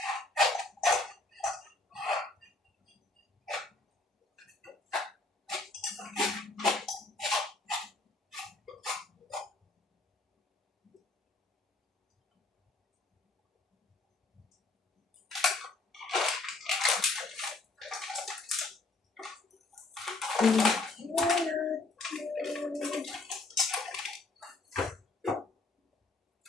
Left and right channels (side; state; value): right; quieter; 3.2 dB